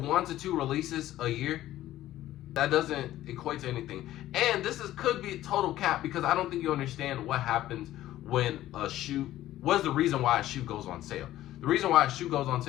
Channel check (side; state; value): right; quieter; 14.2 dB